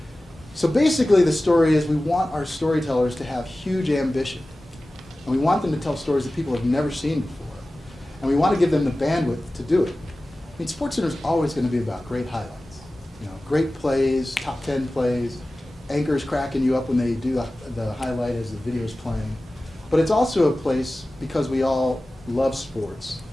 So basically the story is we want our storytellers to have huge ambition. And we want them to tell stories that people have never seen before. And we want to give them the bandwidth to do it. I mean, SportsCenter is always going to be about great highlights. You know, great plays, top 10 plays, anchors cracking you up when they do the highlight as the video's playing. But it's also a place, because we all love sports,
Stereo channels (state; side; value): normal; both; correlation 0.96